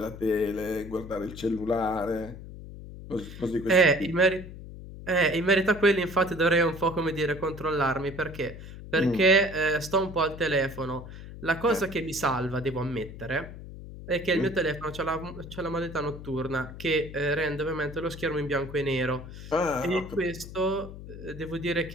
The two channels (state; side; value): noise; left; hum, 13 dB below the sound